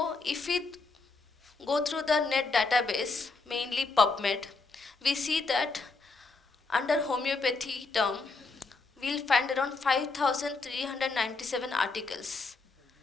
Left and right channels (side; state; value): right; quieter; 4.0 dB